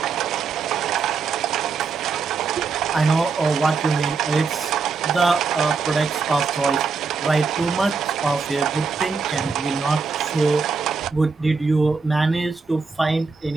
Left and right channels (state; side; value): quieter; left; 4.8 dB